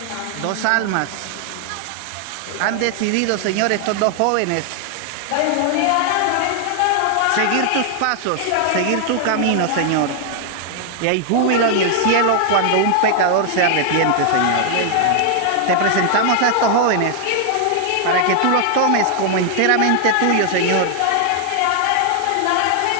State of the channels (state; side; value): different; both; correlation 0.00